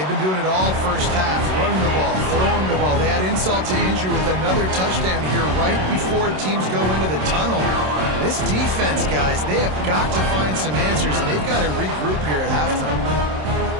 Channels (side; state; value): left; late; 27 ms